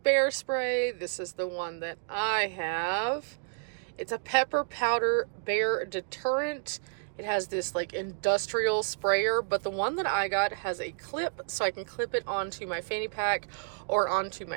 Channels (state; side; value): silent; left; digital silence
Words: bear spray, this is the one that I have. It's a pepper powder bear deterrent. It has this like industrial sprayer, but the one that I got has a clip, so I can clip it onto my fanny pack or onto